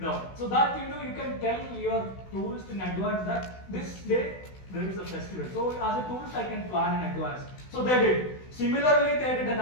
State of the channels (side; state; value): right; late; 16 ms